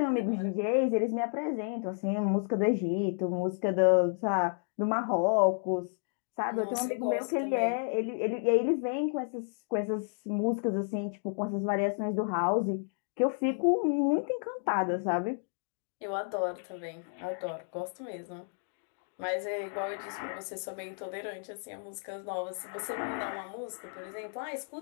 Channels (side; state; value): right; silent; 57 dB below the other